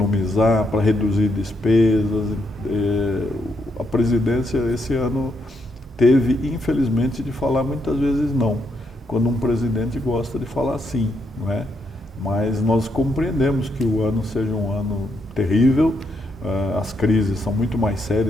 para reduzir despesas. A presidência esse ano teve, infelizmente, de falar muitas vezes não, quando um presidente gosta de falar sim, não é? Mas nós compreendemos que o ano seja um ano terrível, as crises são muito mais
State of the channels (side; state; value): both; normal; correlation 0.78